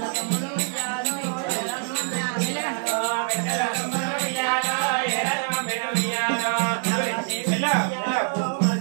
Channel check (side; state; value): left; silent; 62 dB below the other